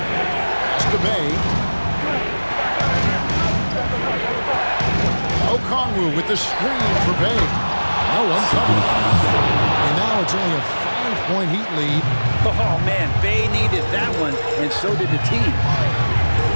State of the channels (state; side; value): inverted; both; correlation -1.00